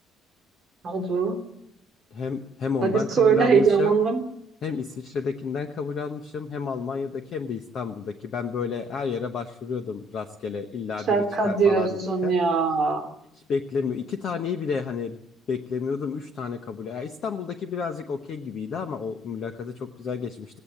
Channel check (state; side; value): normal; both; correlation 0.63